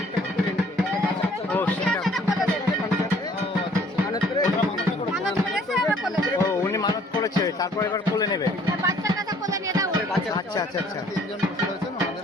ও সেটা, ও উনি মানত করেছে, তারপর এবার কোলে নেবে। আচ্ছা আচ্ছা আচ্ছা।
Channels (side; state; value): both; normal; correlation 0.58